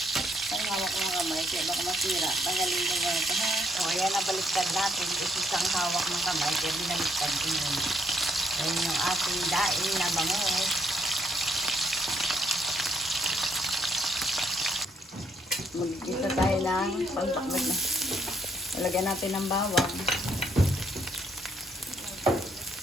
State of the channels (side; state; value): both; normal; correlation 0.70